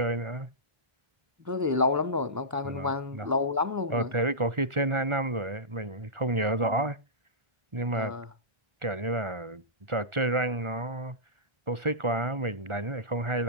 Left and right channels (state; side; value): late; left; 1.4 ms